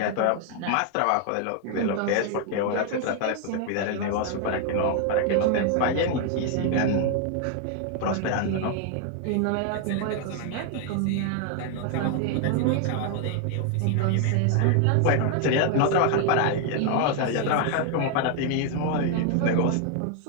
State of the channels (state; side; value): different; both; correlation 0.00